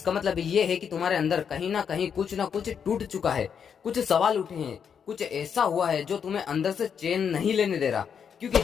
मतलब ये है कि तुम्हारे अंदर कहीं ना कहीं कुछ ना कुछ टूट चुका है, कुछ सवाल उठे हैं, कुछ ऐसा हुआ है जो तुम्हें अंदर से चैन नहीं लेने दे रहा। क्योंकि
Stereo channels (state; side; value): quieter; right; 7.3 dB